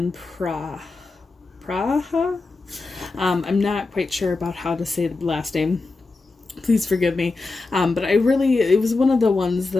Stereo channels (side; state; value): right; quieter; 3.6 dB